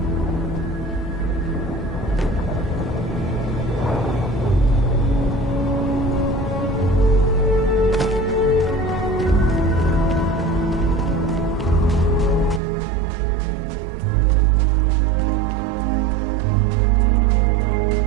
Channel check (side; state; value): left; drops out; at 12.6 s